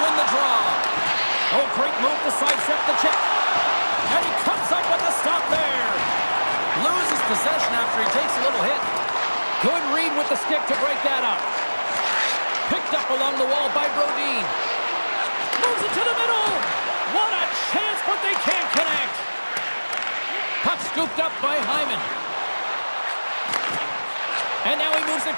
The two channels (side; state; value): both; inverted; correlation -1.00